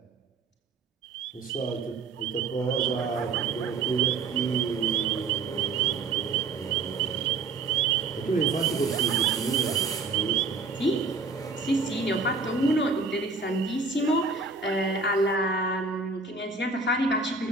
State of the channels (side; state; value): left; quieter; 4.2 dB